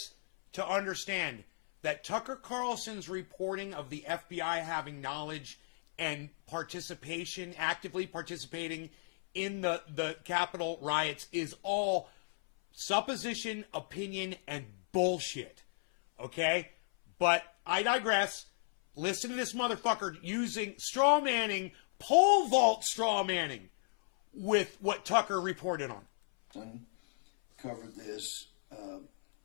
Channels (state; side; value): silent; right; 55 dB below the other